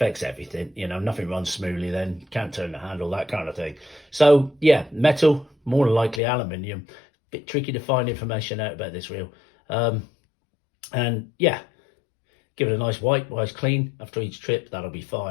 everything, you know, nothing runs smoothly then, can't turn the handle, that kind of thing. So, yeah, metal, more than likely aluminium. Bit tricky to find information out about this reel. And, yeah, give it a nice wipe, nice clean after each trip, that'll be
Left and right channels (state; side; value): drops out; right; at 6.2 s